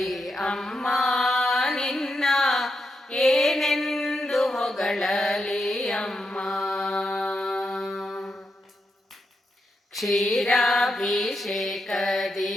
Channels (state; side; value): normal; both; correlation 0.84